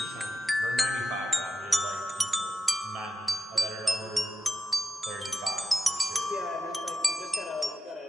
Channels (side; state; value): both; normal; correlation 0.89